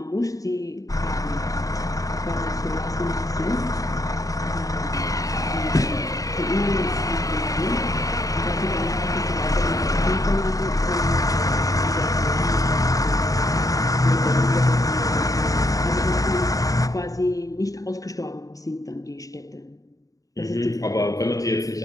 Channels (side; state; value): right; late; 0.17 ms